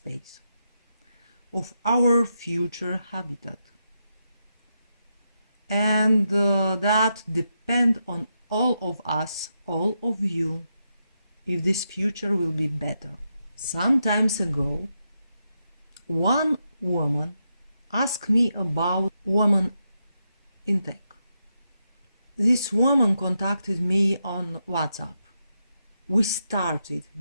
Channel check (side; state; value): both; inverted; correlation -0.84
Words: of our future habitat. And that depend on all of us, all of you, if this future will be better. Some times ago, one woman asked me about women in tech. This woman contacted me on WhatsApp. We started